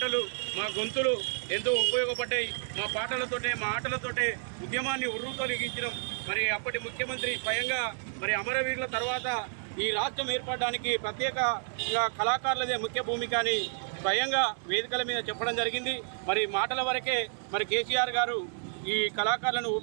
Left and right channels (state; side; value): silent; left; 58 dB below the other